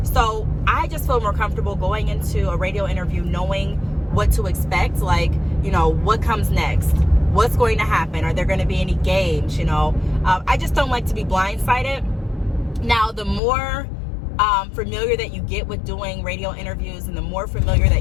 So I just feel more comfortable going into a radio interview knowing what to expect, like, what comes next. What's going to happen? Are there going to be any games? I just don't like to be blindsided. Now, the more familiar that you get with doing radio interviews, and the more familiar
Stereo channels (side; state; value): right; drops out; at 13.4 s